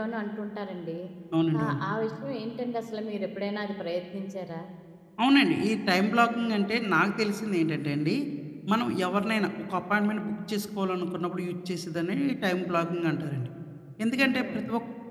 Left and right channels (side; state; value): both; identical; correlation 1.00